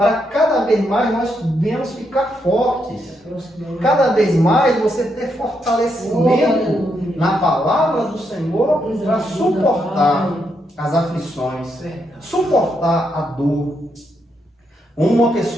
cada vez mais nós venhamos ficar fortes. Cada vez mais você ter fortalecimento na palavra do Senhor para suportar as aflições, suportar a dor. Uma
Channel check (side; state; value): both; normal; correlation 0.80